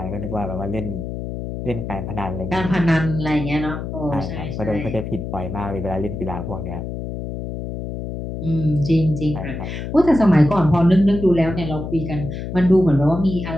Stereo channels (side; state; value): left; noise; hum, 6 dB below the sound